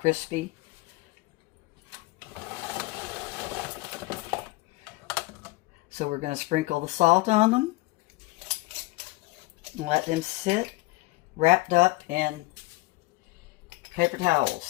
So we're going to sprinkle the salt on them and let them sit wrapped up in paper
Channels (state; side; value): quieter; right; 22.2 dB